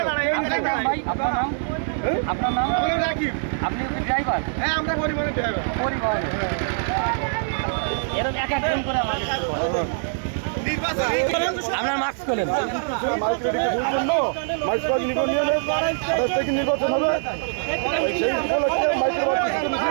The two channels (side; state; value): left; silent; digital silence